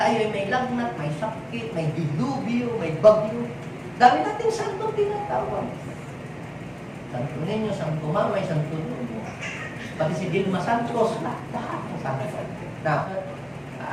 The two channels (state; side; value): identical; both; correlation 1.00